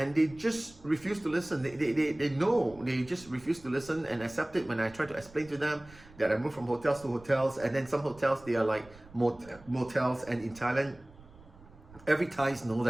they just refuse to listen. They know, they just refuse to listen and accept it when I try to explain to them that I move from hotels to hotels, and then some hotels, they are like motels. And in Thailand, every Thais know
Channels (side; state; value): right; noise; rumble, 23 dB below the sound